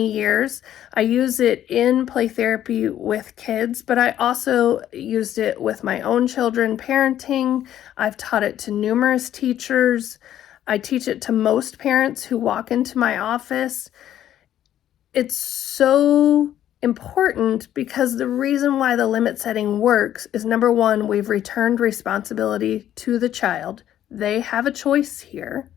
years. I use it in play therapy with kids, but I also used it with my own children parenting. I've taught it to numerous teachers. I teach it to most parents who walk into my office. It's so important because the reason why the limit setting works is, number one, we've returned responsibility to the child. They have a choice here.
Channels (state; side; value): quieter; right; 11.5 dB